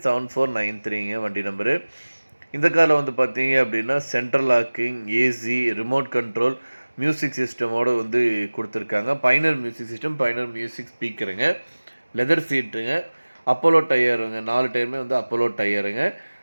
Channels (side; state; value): both; inverted; correlation -1.00